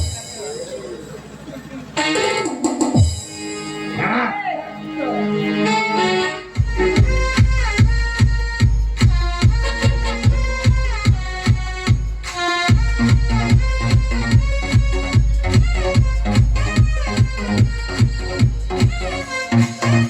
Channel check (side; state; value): both; identical; correlation 1.00